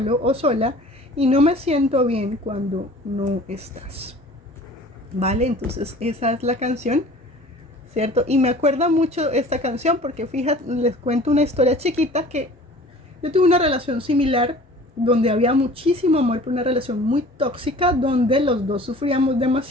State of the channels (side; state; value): both; normal; correlation 0.45